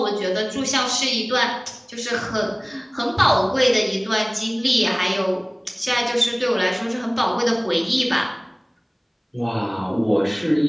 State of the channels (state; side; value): identical; both; correlation 1.00